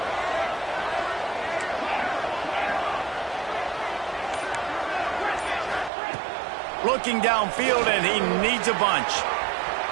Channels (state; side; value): drops out; left; at 5.9 s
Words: Looking downfield, and he needs a bunch.